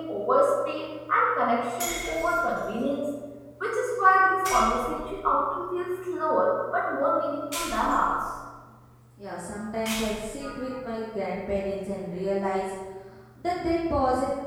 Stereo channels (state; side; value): identical; both; correlation 1.00